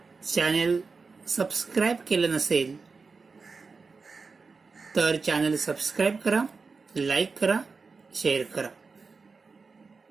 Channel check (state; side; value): quieter; left; 4.5 dB